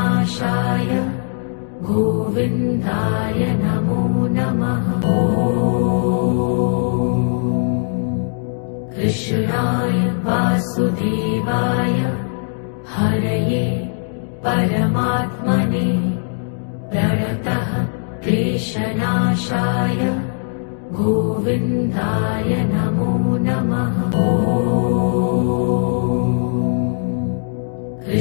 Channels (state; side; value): silent; right; 59 dB below the other